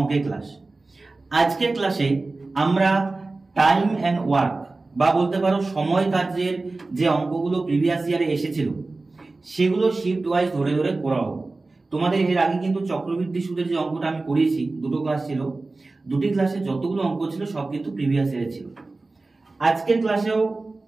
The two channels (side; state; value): left; quieter; 3.4 dB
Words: ক্লাস। আজকের ক্লাসে আমরা টাইম অ্যান্ড ওয়ার্ক বা বলতে পারো সময় কার্যের যে অঙ্কগুলো প্রিভিয়াস ইয়ারে এসেছিল সেগুলো শিফট ওয়াইজ ধরে ধরে করাবো। তোমাদের এর আগে কিন্তু চক্রবৃদ্ধি সুদের যে অঙ্কটা আমি করিয়েছি, দুটো ক্লাস ছিল, দুটি ক্লাসে যতগুলো অঙ্ক ছিল সব কিন্তু প্রিভিয়াস ইয়ারে ছিল। আজকের ক্লাসেও